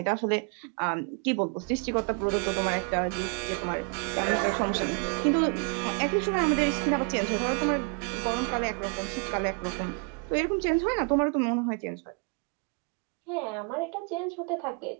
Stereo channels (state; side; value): quieter; left; 37.9 dB